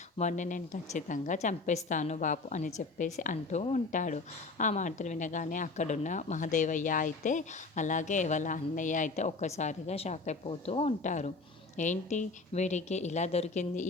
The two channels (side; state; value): right; quieter; 3.7 dB